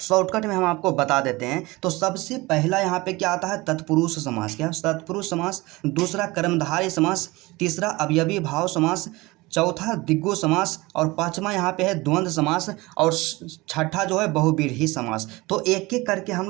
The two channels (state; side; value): quieter; left; 22.0 dB